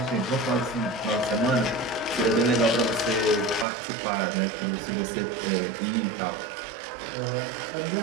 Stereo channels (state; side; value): drops out; left; at 3.7 s